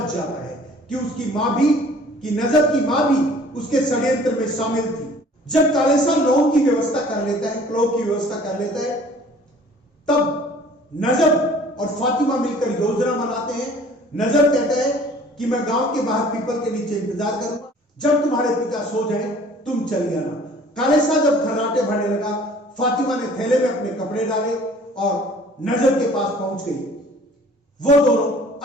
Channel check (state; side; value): normal; both; correlation 0.51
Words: जाता है कि उसकी मां भी, कि नजब की मां भी उसके षड्यंत्र में शामिल थी। जब काले शाह लौंग की व्यवस्था कर लेता है, क्लोव की व्यवस्था कर लेता है, तब नजब और फातिमा मिलकर योजना बनाते हैं। नजब कहता है कि मैं गांव के बाहर पीपल के नीचे इंतजार करूंगा, जब तुम्हारे पिता सो जाए तुम चली आना। काले शाह जब खर्राटे भरने लगा, फातिमा ने थैले में अपने कपड़े डाले और नजब के पास पहुंच गई। वो दोनों